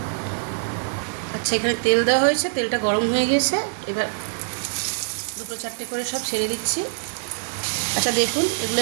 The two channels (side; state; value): left; silent; digital silence